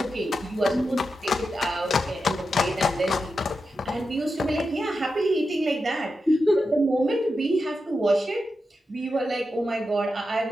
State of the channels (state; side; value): normal; both; correlation 0.89